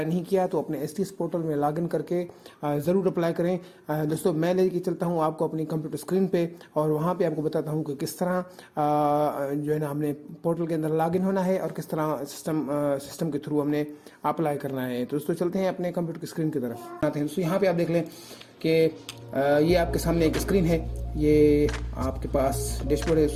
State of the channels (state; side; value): identical; both; correlation 1.00